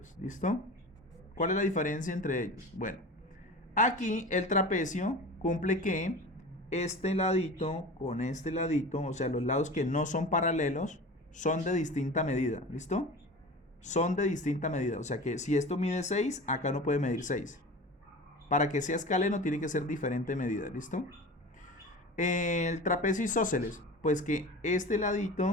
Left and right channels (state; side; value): normal; both; correlation 0.34